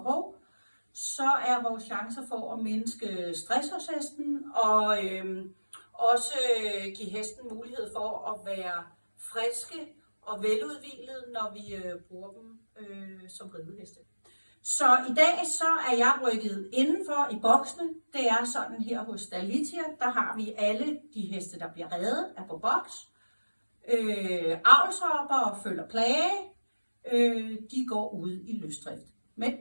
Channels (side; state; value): both; inverted; correlation -1.00